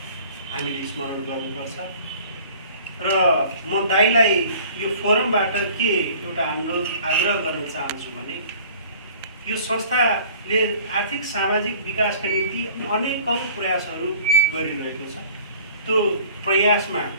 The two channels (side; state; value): both; inverted; correlation -0.49